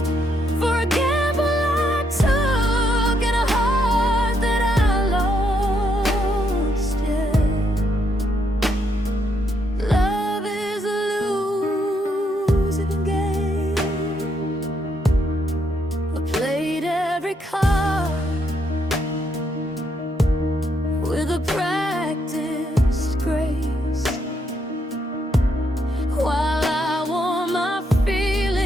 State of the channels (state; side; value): normal; both; correlation 0.76